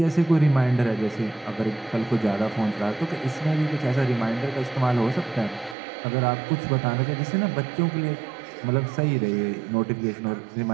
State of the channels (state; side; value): drops out; left; at 5.8 s